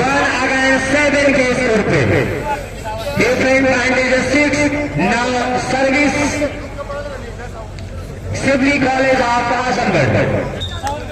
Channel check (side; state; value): both; identical; correlation 1.00